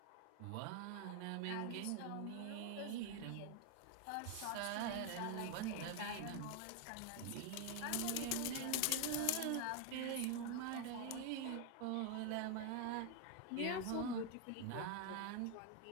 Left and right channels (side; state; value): both; different; correlation 0.01